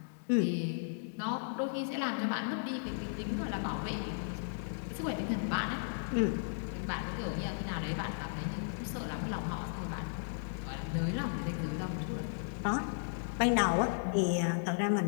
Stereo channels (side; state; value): right; silent; 54 dB below the other